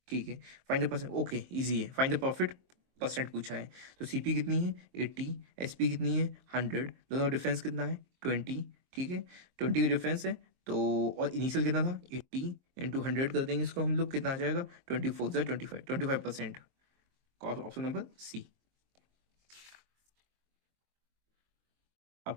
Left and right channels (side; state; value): left; late; 23 ms